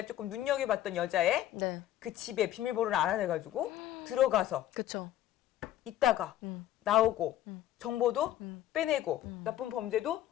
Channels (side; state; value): right; quieter; 12.8 dB